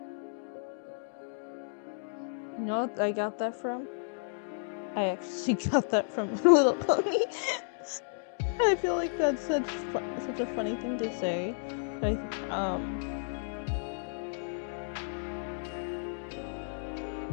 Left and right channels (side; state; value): right; silent; digital silence